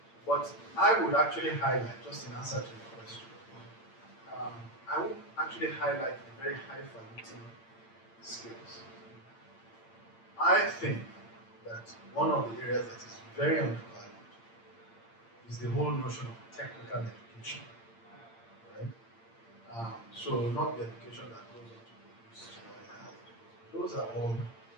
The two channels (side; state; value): right; late; 8.8 ms